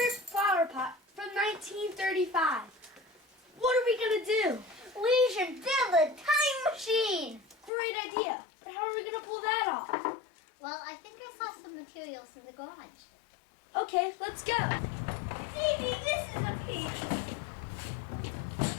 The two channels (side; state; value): right; drops out; at 7.7 s